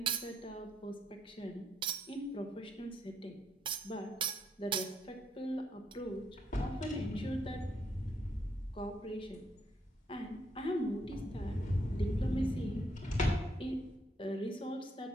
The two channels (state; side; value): normal; both; correlation 0.74